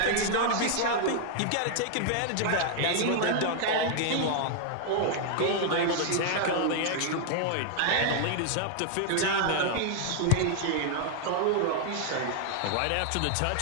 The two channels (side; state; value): both; different; correlation -0.01